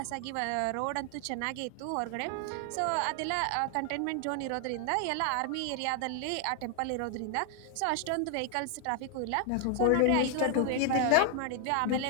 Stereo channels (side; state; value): both; different; correlation 0.00